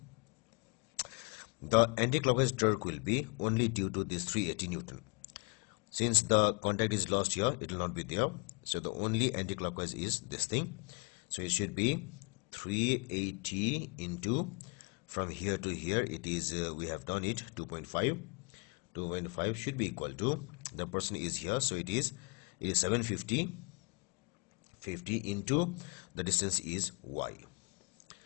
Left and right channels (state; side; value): quieter; right; 33.1 dB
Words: the anti-clockwise torque will be only due to this 380 Newton. Since the contact is lost here, it will not be there, so the only anti-clockwise is this thing. So it should be 380 into, from here to here it is we have done it 2.5 should be equal to, the person is here, so it is 750 into the distance is y.